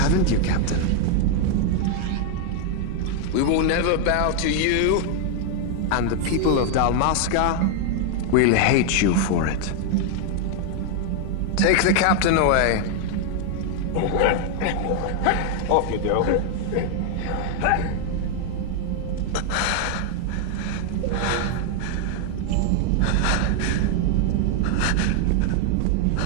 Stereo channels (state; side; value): different; both; correlation 0.00